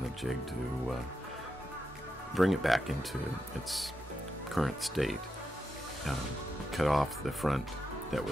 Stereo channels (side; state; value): both; normal; correlation 0.86